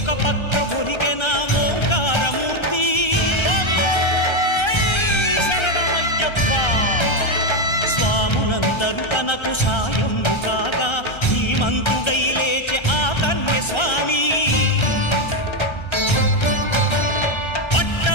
పక్క ఒరిగెన ఓంకారమూర్తి స్వాములందరూ తనకు సాయము కాగా ధీమంతుడై లేచే ఆ కన్య స్వామి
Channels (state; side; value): late; right; 1.3 ms